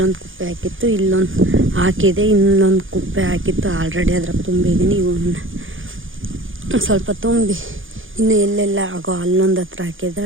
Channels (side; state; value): left; late; 0.58 ms